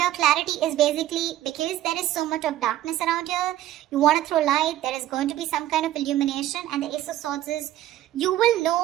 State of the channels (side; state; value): left; quieter; 13.7 dB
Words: Clarity is basically because there is so much of darkness around here, you want to throw light, there is going to be some kind of illumination, and the Ace of Swords is you will